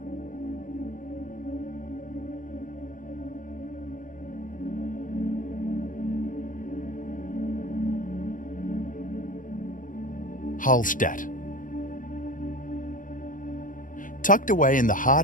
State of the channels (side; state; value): right; late; 0.38 ms